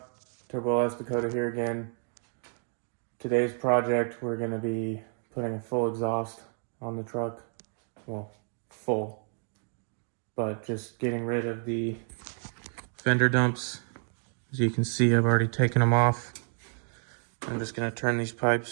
Dakota here again. Today's project, we're going to be putting a full exhaust on the truck. Well, full. But just getting rid of the fender dumps. As you can see, I've already taken them off. I'm just going to turn these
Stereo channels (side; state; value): left; silent; 58 dB below the other